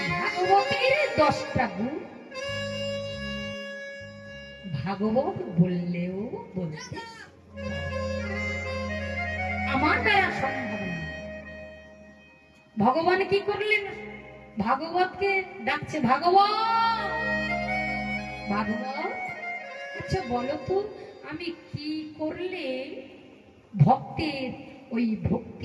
ভাগবতের 10টা গুণ ভাগবত বললেও বলতে আমার দ্বারা সম্ভব না। ভগবান কি করলেন? ভাগবতকে ডাকছে, ভাগবত ভাগবত, আচ্ছা বলো তো আমি কি করলে ভক্তের ওই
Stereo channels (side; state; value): both; identical; correlation 1.00